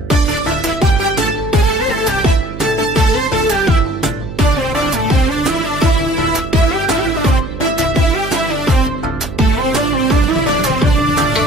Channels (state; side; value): noise; right; hum, 11 dB below the sound